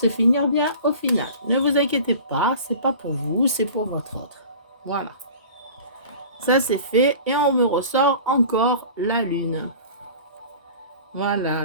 finir bien au final. Ne vous inquiétez pas, c'est pas pour vous, c'est pour votre autre. Voilà. Ça c'est fait et on me ressort encore la lune.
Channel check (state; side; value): inverted; both; correlation -0.41